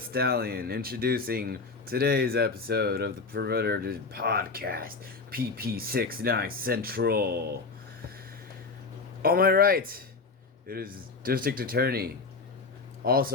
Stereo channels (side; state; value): right; quieter; 4.2 dB